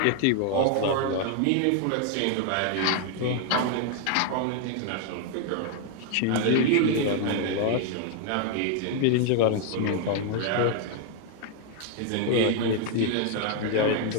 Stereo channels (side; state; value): both; different; correlation 0.00